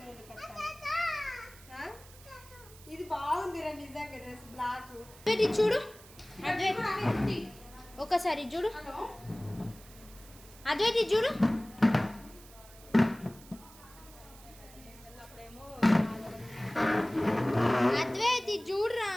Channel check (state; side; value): noise; right; hiss, 21 dB below the sound